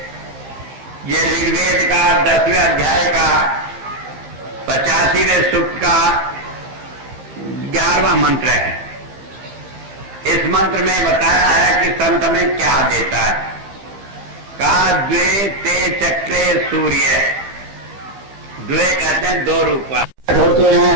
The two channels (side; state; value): left; late; 15 ms